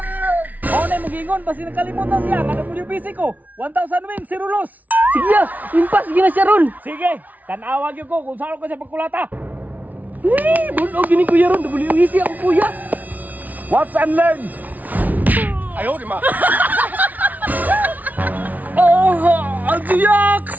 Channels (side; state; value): left; late; 0.076 ms